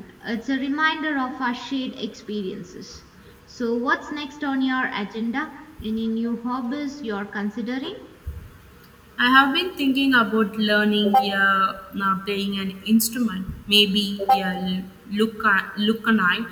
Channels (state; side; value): identical; both; correlation 1.00